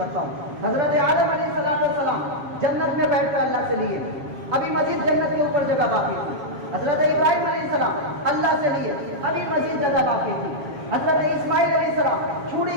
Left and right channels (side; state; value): left; late; 7.4 ms